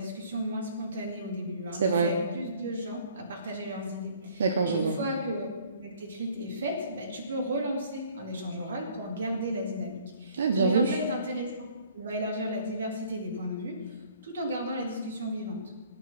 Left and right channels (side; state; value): both; inverted; correlation -0.57